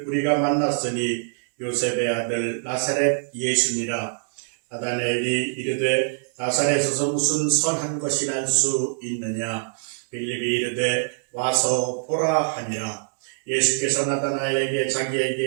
우리가 만났으니 요셉의 아들 나사렛 예수니라. 나다나엘이 이르되 나사렛에서 무슨 선한 것이 날 수 있느냐. 빌립이 이르되 와서 보라 하니라. 예수께서 나다나엘에게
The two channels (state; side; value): silent; left; digital silence